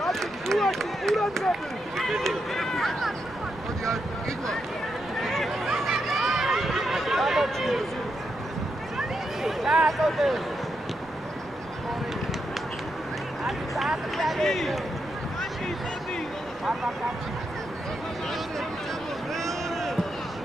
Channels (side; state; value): right; noise; rumble, 24 dB below the sound